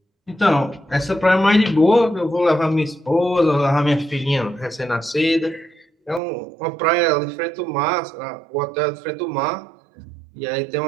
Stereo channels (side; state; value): left; drops out; at 6.2 s